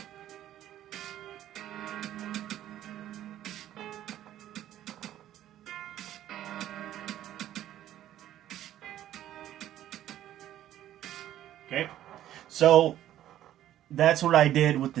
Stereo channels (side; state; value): left; quieter; 12.5 dB